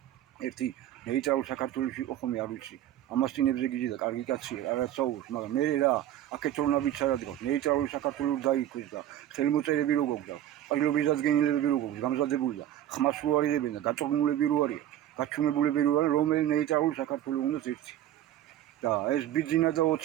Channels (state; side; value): quieter; left; 12.0 dB